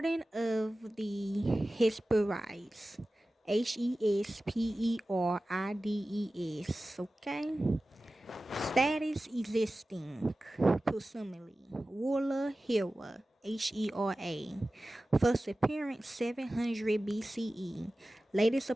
of the Hesperides. Hesperides, okay? Status existing, presumably. Ruler Hera, Hera. First appearance 700 BCE. Latest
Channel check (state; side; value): normal; both; correlation 0.96